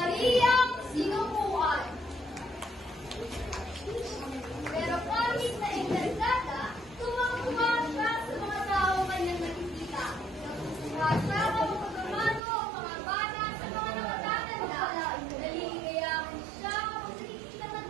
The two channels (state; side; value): drops out; left; at 12.4 s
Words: Sinukuan. Pero kahit na encantada, tumang-tuma siya sa mga tao kanyang nakikita. Natutuwa siya kung pagkamano ang mga bata sa mga nakatatanda. Naliligayahan siya kapag nakikita